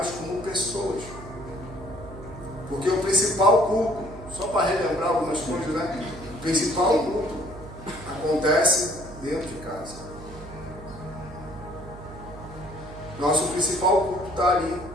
como pessoas. Porque o principal culto, só para relembrar algumas coisas, né? O principal culto acontece dentro de casa. Nosso principal culto está ali.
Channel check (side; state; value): right; noise; hum, 14 dB below the sound